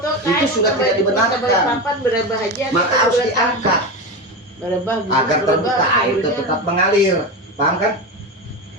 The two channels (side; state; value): both; normal; correlation 0.20